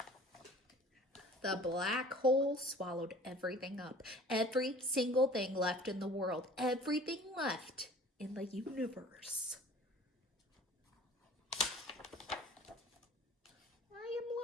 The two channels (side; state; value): both; normal; correlation 0.47